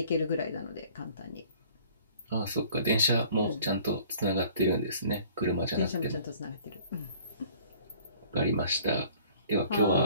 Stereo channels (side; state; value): both; inverted; correlation -0.53